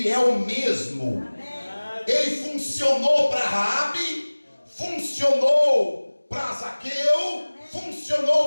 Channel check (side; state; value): both; inverted; correlation -1.00